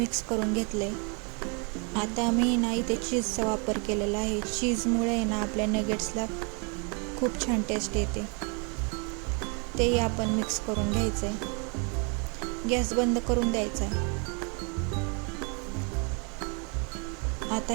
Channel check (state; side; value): quieter; left; 34.7 dB